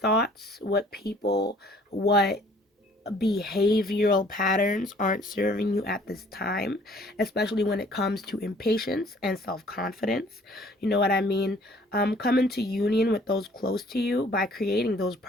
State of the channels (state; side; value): normal; both; correlation 0.56